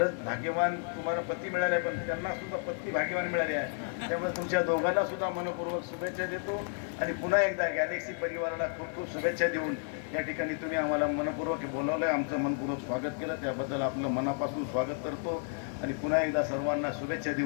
भाग्यवान तुम्हाला पती मिळाले, पण त्यांना सुद्धा पत्नी भाग्यवान मिळाली आहे. त्यामुळे तुमच्या दोघांना सुद्धा मनपूर्वक शुभेच्छा देतो. आणि पुन्हा एकदा गॅलेक्सी परिवाराला खूप खूप शुभेच्छा देऊन या ठिकाणी तुम्ही आम्हाला मनपूर्वक बोलावलं, आमचं मनपूर्वक स्वागत केलं, त्याबद्दल आपलं मनापासून स्वागत करतो. आणि पुन्हा एकदा सर्वांना शुभेच्छा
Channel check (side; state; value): right; silent; 57 dB below the other